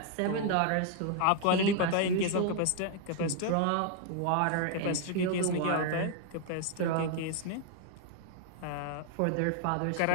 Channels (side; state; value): both; different; correlation 0.00